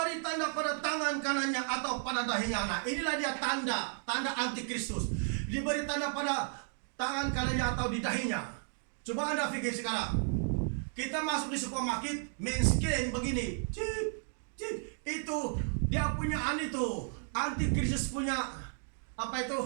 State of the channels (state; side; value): silent; left; 55 dB below the other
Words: tanda pada tangan kanannya atau pada dahinya. Nah, inilah dia tanda antikristus. Diberi tanda pada tangan kanannya atau di dahinya. Coba Anda pikir sekarang. Kita masuk di supermarket, main scan begini. Cip, cip. Itu dia punya itu, antikristus punya apa